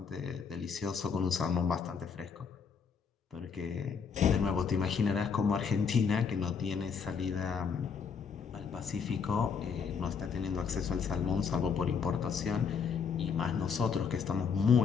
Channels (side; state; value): right; quieter; 6.1 dB